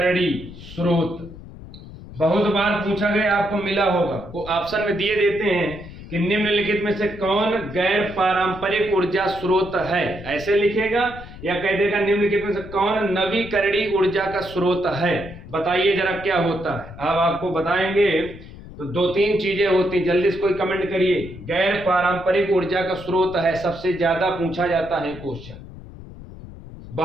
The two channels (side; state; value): left; noise; rumble, 15 dB below the sound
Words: स्रोत। बहुत बार पूछा गया, आपको मिला होगा, वो ऑप्शन में दिए देते हैं कि निम्नलिखित में से कौन गैर पारंपरिक ऊर्जा स्रोत है, ऐसे लिखेगा या कह देगा निम्नलिखित में से कौन नवीकरणीय ऊर्जा का स्रोत है। बताइए जरा क्या होता है, अब आपको बताएंगे। तो दो तीन चीजें होती, जल्दी से कोई कमेंट करिए। गैर पारंपरिक ऊर्जा का स्रोत है, सबसे ज्यादा पूछा जाता है क्वेश्चन,